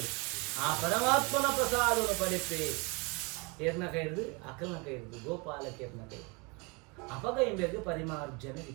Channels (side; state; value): left; quieter; 29.4 dB